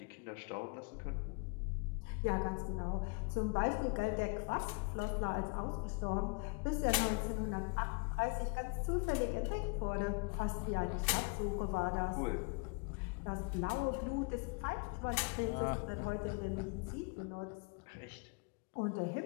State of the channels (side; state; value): right; quieter; 32.6 dB